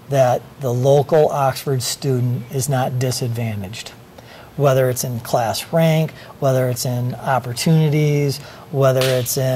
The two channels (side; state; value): both; identical; correlation 1.00